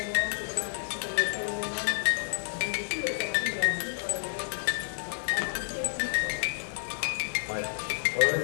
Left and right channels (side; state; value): right; silent; digital silence